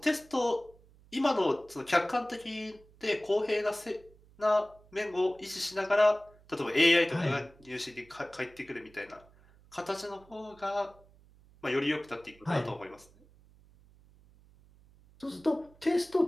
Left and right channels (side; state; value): right; noise; hum, 27 dB below the sound